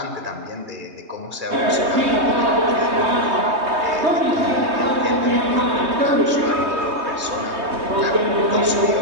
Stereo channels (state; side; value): late; left; 3.2 ms